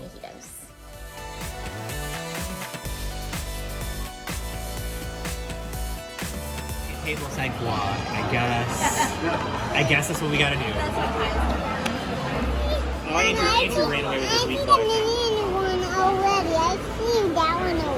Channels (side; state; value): both; identical; correlation 1.00